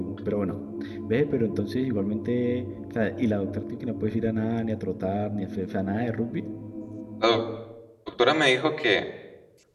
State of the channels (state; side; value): identical; both; correlation 1.00